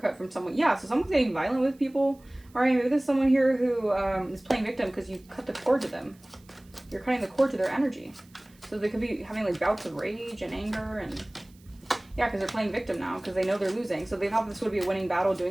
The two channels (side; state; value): right; noise; hiss, 30 dB below the sound